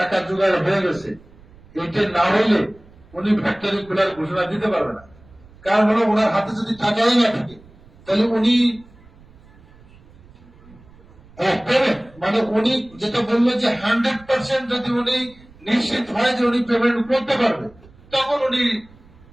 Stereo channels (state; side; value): noise; right; rumble, 25 dB below the sound